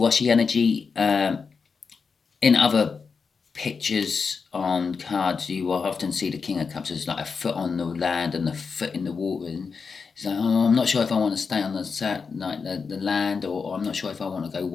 energy. In other pictures on cards, you will often see the King of Cups as like a foot on the land and a foot in the water, and it's like, oh, I'm not sure if I want to stay on the land, or I'm not sure if I want to go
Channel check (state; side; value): quieter; right; 5.3 dB